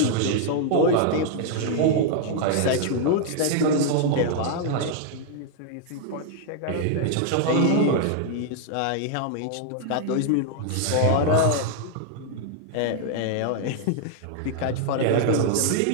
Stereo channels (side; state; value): both; different; correlation -0.01